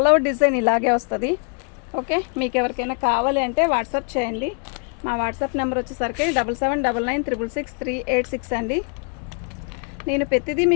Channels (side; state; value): right; quieter; 38.8 dB